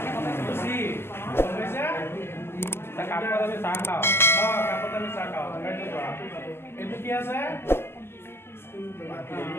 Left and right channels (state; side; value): late; right; 0.11 ms